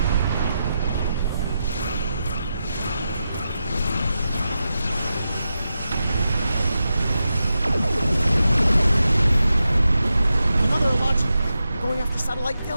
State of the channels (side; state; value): both; inverted; correlation -0.89